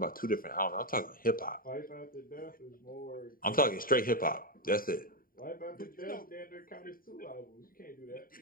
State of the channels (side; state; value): right; late; 0.41 ms